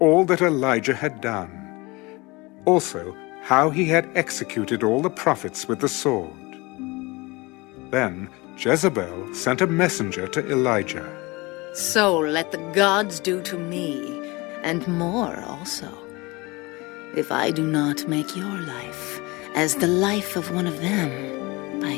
that Elijah had done, also how he had executed all the prophets with the sword. Then Jezebel sent a messenger to Elijah. So let the gods do to me, and more also, if I do not make your life as the life of one of them by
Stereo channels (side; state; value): right; quieter; 24.1 dB